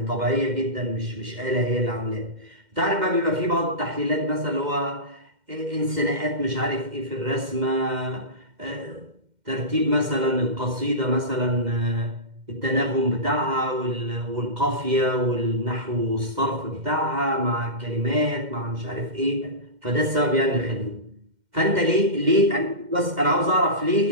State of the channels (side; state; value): left; late; 2.1 ms